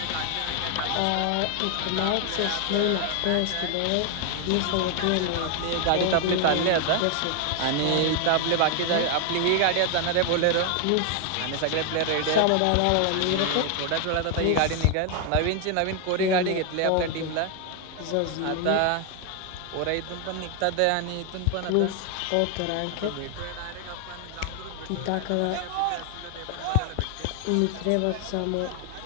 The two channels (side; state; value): both; different; correlation 0.00